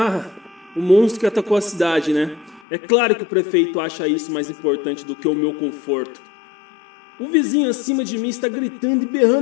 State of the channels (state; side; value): drops out; right; at 2.6 s